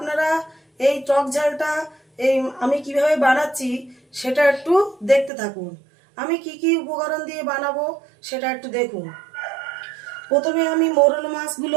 এই টক ঝালটা আমি কিভাবে বানাচ্ছি সেটা একটু দেখতে থাকুন। আমি কি কি উপকরণ দিয়ে বানাবো সেটা একটু দেখুন। প্রথমে আমি মৌরলা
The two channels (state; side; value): drops out; left; at 5.3 s